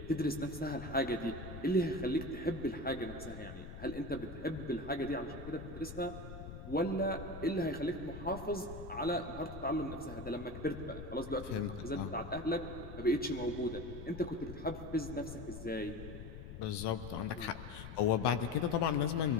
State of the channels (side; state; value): left; noise; rumble, 10 dB below the sound